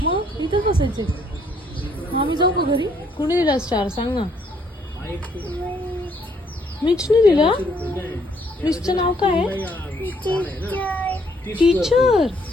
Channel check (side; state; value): both; normal; correlation 0.68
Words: मग इथं बसायचे. आम्ही जाऊ का घरी? कुणी दिला स्टार सांग ना. मिचने दिला? मिचचं नाव काय आहे? टीचर.